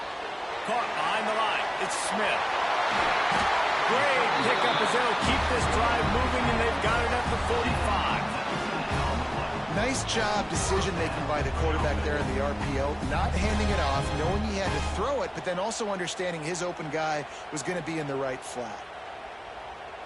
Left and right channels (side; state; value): both; identical; correlation 1.00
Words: Caught behind the line. It's Smith. Great pickup as they'll keep this drive moving, and they've got it at the 45. Nice job decision-making by the quarterback there in the RPO, not handing it off, knowing he had to throw it, but then also understanding his open guy was going to be in the right flat.